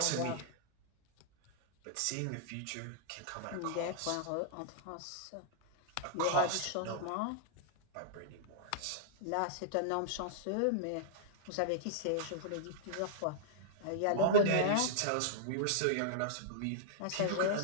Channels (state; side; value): different; both; correlation -0.02